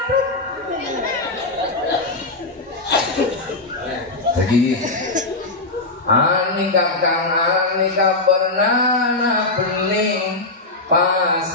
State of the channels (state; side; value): quieter; right; 3.1 dB